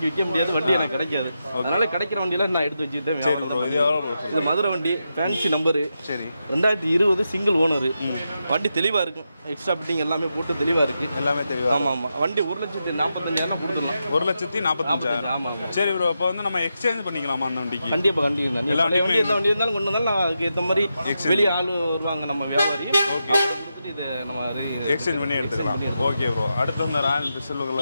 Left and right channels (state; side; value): inverted; both; correlation -0.87